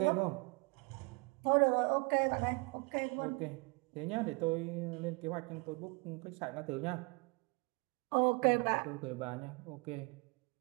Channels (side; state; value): left; quieter; 30.6 dB